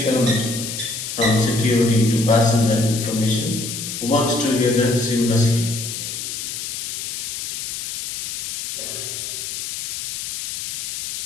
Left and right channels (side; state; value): left; noise; hiss, 5 dB below the sound